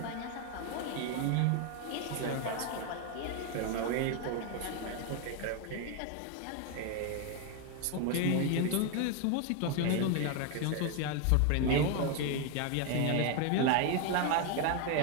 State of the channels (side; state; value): both; different; correlation 0.01